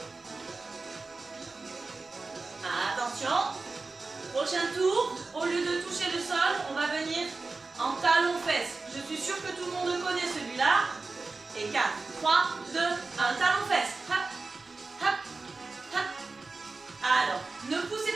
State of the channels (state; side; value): quieter; left; 3.8 dB